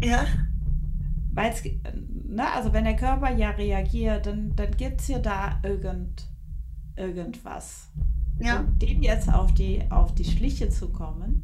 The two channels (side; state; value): both; identical; correlation 1.00